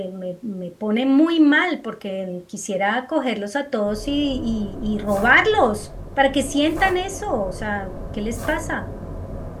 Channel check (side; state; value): both; identical; correlation 1.00